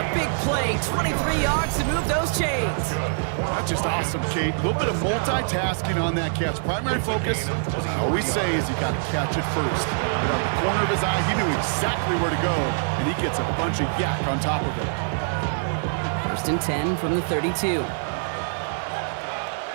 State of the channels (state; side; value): silent; left; digital silence